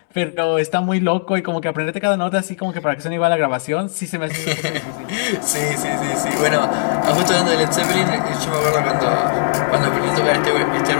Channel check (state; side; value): silent; right; digital silence